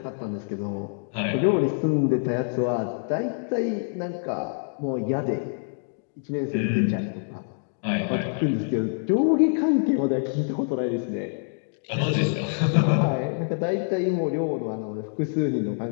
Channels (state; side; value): silent; right; digital silence